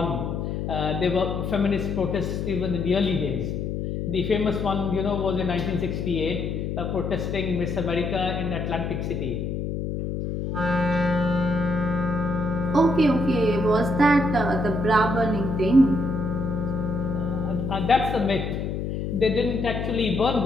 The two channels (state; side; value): noise; left; hum, 3 dB below the sound